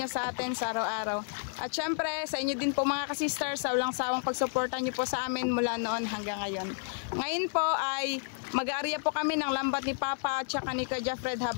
sa atin sa araw-araw. At syempre, sa inyo din po mga ka-sisters, sa walang sawang pagsuporta niyo po sa amin mula noon hanggang ngayon. Ngayon po ay mag-aarya po kami ng lambat ni Papa at saka ni Kuya Fred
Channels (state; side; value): silent; right; digital silence